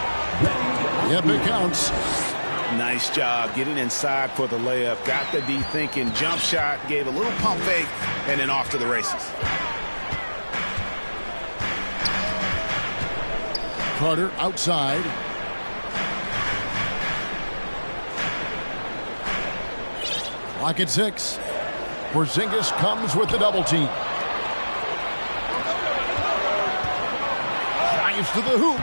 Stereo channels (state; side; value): inverted; both; correlation -1.00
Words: Yep, it counts. Nice job getting inside for the layup. Got the D thinking. Jump shot. Gave a little pump fake. And then off to the races. Carter outside. Clock at 6. Porzingis comes with the double team. Drives to the hoop.